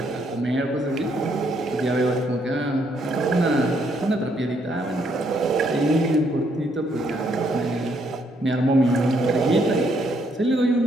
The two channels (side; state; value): both; normal; correlation 0.72